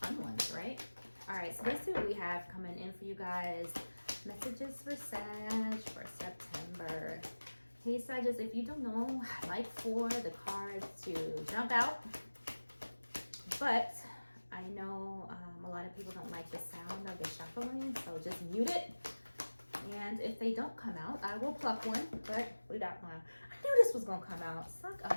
fun ones, right? All right, so let's see what we have coming in for you guys. Messages for Sag for September. Hey Sagittarius, if you don't know, I like for the cards to jump out, but I know a lot of people don't like the sound of the shuffling, so just mute it. And if they don't come out, I will pluck one, but we got one. I knew this was gonna come out. Suck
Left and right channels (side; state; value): both; inverted; correlation -1.00